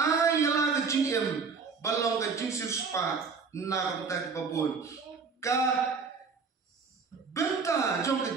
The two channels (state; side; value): quieter; left; 5.1 dB